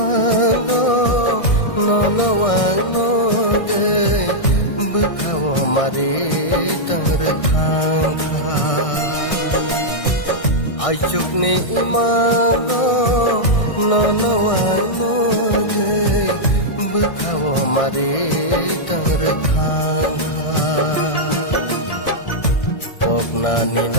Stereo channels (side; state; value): right; late; 1.6 ms